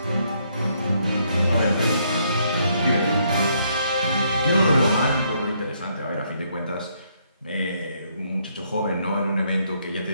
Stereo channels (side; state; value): both; inverted; correlation -0.72